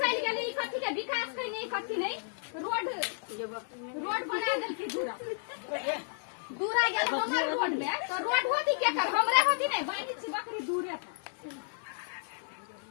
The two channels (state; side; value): silent; right; 56 dB below the other